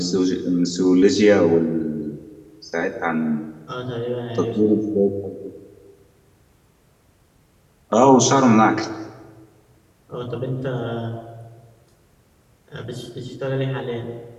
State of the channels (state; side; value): identical; both; correlation 1.00